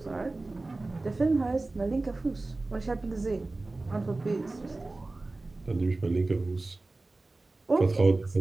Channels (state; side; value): quieter; left; 3.2 dB